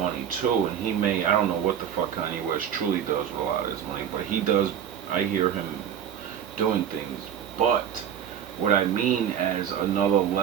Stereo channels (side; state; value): left; quieter; 9.1 dB